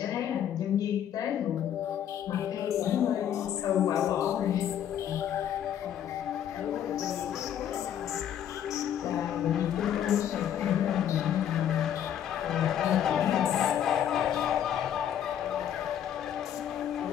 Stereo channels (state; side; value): quieter; right; 9.9 dB